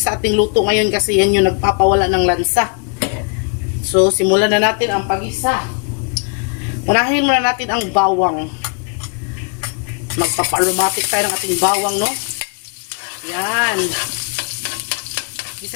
ating luto ngayon kasi yan yung nagpapawala ng lansa. So, simulan na natin ang pag-isa. Unahin muna natin ang bawang. Magpapa-aromatic tayo ng ating bawang, no? Yan.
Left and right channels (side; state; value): right; quieter; 38.5 dB